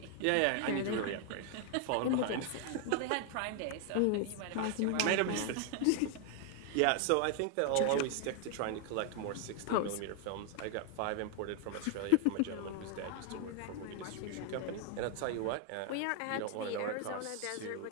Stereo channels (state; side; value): different; both; correlation 0.00